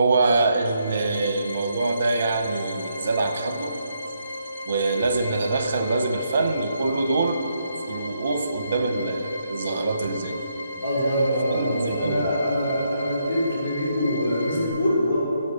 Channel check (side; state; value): both; inverted; correlation -0.77